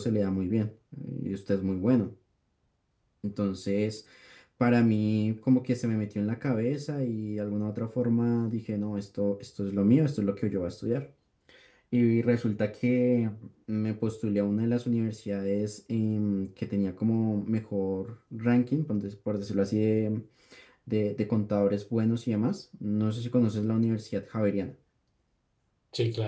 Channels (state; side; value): identical; both; correlation 1.00